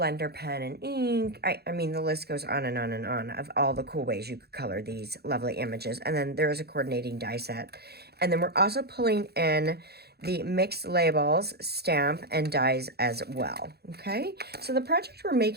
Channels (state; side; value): late; left; 0.47 ms